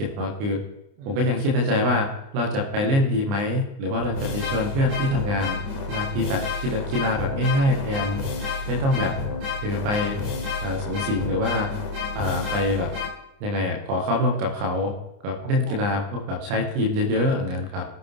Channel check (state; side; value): late; left; 29 ms